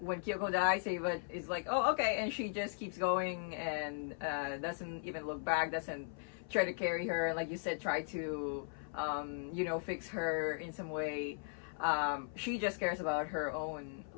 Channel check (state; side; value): silent; right; 52 dB below the other